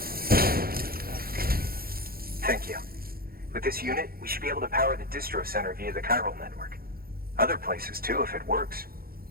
Thank you. With this unit, we should be able to power the distro center via the chiral network. Other places too, if it works.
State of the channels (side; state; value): left; late; 0.43 ms